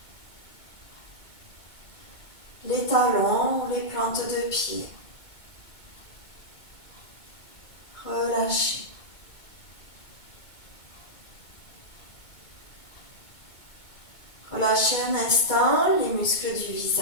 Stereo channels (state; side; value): late; right; 2.2 ms